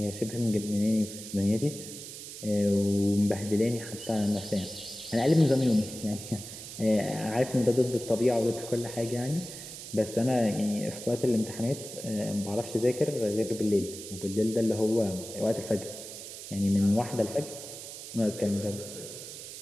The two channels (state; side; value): noise; right; hiss, 11 dB below the sound